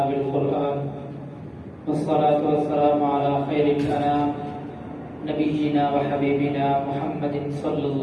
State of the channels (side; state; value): both; identical; correlation 1.00